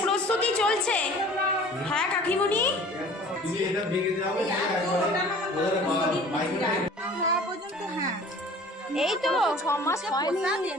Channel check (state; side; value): normal; both; correlation 0.47